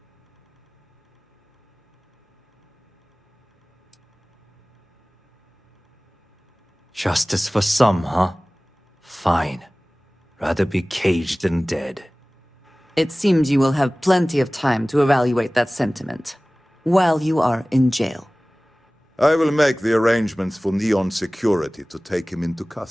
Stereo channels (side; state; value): both; normal; correlation 0.98